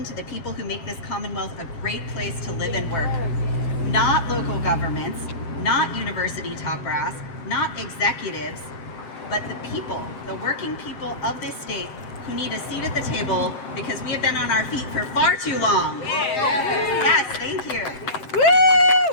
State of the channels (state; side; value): late; right; 7.6 ms